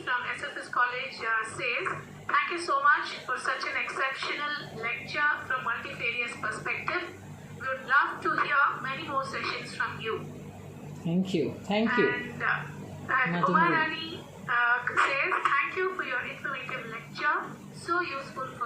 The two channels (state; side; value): identical; both; correlation 1.00